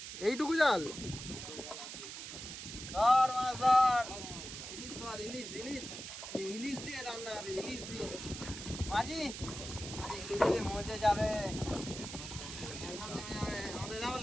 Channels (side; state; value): right; noise; hiss, 9 dB below the sound